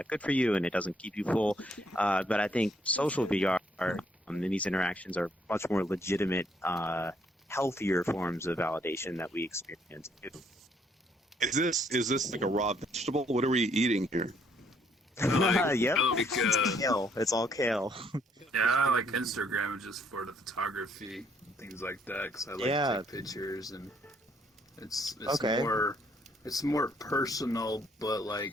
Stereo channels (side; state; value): both; normal; correlation 0.68